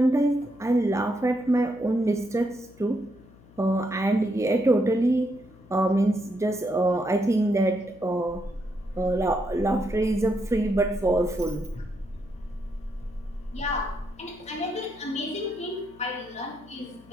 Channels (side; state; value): left; noise; hum, 25 dB below the sound